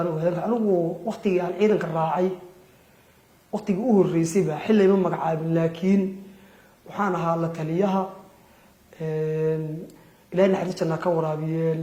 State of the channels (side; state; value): both; identical; correlation 1.00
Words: anigu waqtigii aan ciidanka raacay waqtigii uu horeysay baa xilay ma magacaabin laakiin waxaan ahaa la taliyaha ilaahay naxariisana ka waraabiye